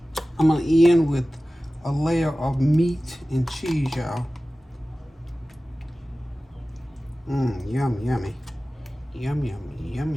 I'm gonna end with a layer of meat and cheese, y'all. Yum, yummy. Yum, yummy, yum,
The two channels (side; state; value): both; normal; correlation 0.96